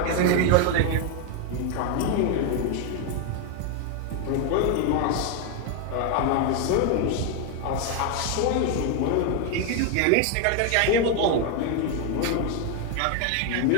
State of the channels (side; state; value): both; different; correlation 0.01